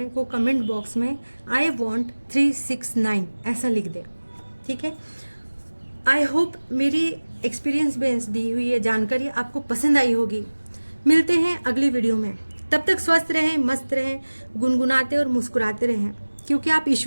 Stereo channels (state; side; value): inverted; both; correlation -1.00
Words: वो कमेंट बॉक्स में आई वॉन्ट 369 ऐसा लिख दे, ठीक है। आई होप मेरी एक्सपीरियंस बेस्ड दी हुई ये जानकारी आपको पसंद आई होगी। मिलते हैं अगली वीडियो में, तब तक स्वस्थ रहें, मस्त रहें, गुनगुनाते और मुस्कुराते रहें, क्योंकि आप